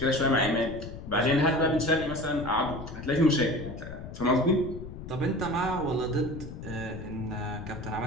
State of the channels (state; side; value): noise; left; rumble, 11 dB below the sound